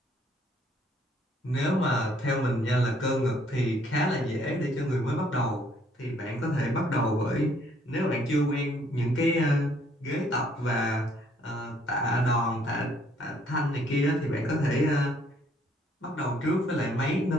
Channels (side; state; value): both; normal; correlation 0.64